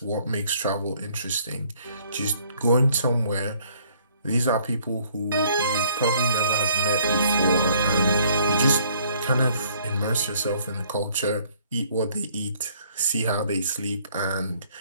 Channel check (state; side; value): inverted; both; correlation -0.61